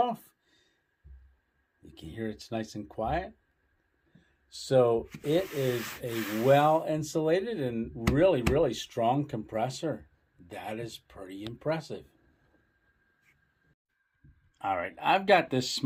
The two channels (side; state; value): both; identical; correlation 1.00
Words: You can hear it's nice and quiet. So it is a well insulated and really, really strong compressor. That is pretty impressive. All right, I've got this